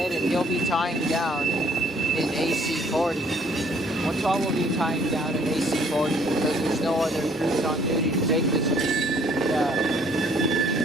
and he'll be tying down in AC40. 112 will be tying down in AC40 because there's no other crews on duty to take this. Yeah.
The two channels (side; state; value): both; normal; correlation 0.61